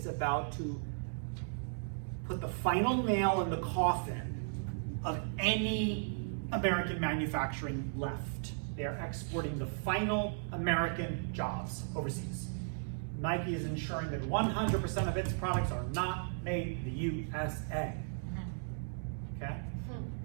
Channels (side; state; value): left; silent; digital silence